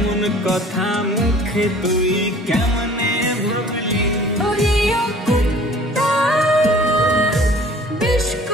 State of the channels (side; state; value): both; normal; correlation 0.49